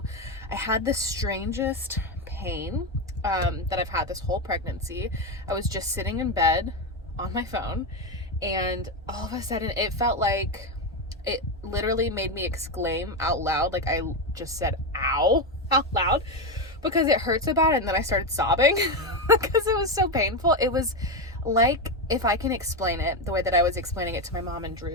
I had the strangest pain that I've had this whole pregnancy. I was just sitting in bed on my phone and all of a sudden it felt like it literally made me exclaim out loud. Like I just said ow out loud because it hurt so bad, and then I started sobbing because it was so painful. It was like, if I can explain it the way that I was explaining it to my mom and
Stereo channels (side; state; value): both; normal; correlation 0.11